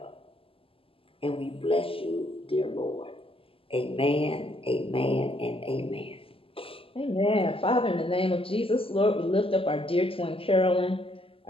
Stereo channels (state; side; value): late; right; 0.26 ms